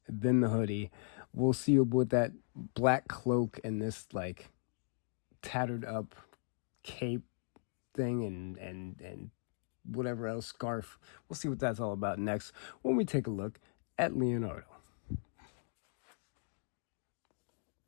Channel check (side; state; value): right; silent; digital silence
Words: then the hoodie. We'll see with that black cloak and this like tattered up cape thing and whatever else, scarf. We'll see what that's all about next when we take a look at Leonardo.